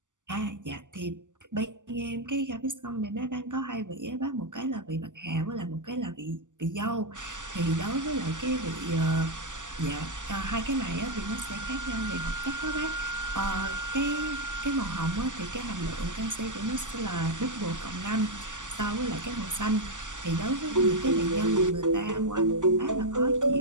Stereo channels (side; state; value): left; late; 0.87 ms